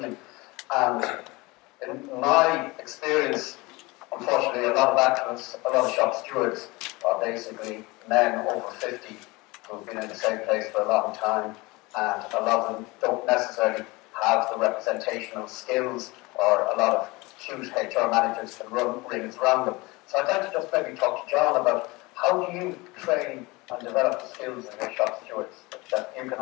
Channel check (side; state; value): right; quieter; 23.4 dB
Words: And in my experience, unfortunately, a lot of activists, a lot of shop stewards are basically men over 50 who've been in the same place for a long time, and a lot of them don't necessarily have the representational skills, or a lot of huge HR managers can run rings around them. So I'd like to just maybe talk to John about how do you train and develop the skills of your shop stewards, that you can